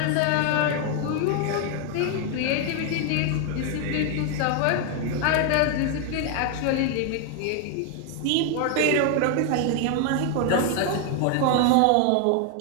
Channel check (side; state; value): both; different; correlation 0.00